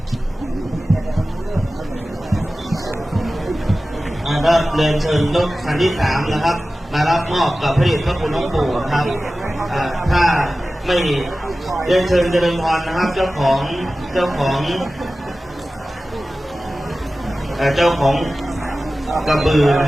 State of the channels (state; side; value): normal; both; correlation 0.96